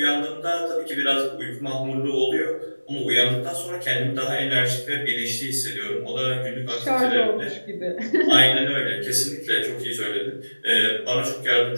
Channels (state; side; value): inverted; both; correlation -1.00